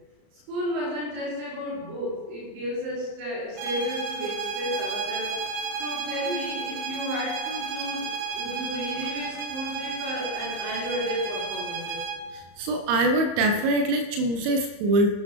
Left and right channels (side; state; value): left; late; 34 ms